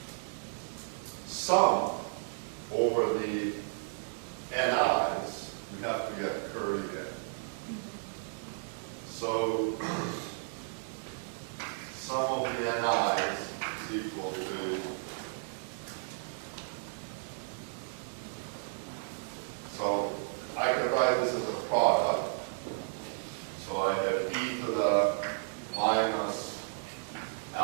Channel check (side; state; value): left; silent; digital silence